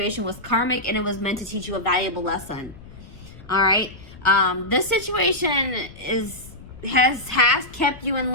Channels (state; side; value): noise; left; rumble, 18 dB below the sound